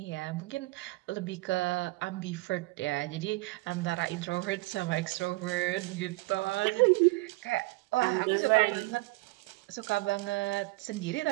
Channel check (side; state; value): left; quieter; 22.6 dB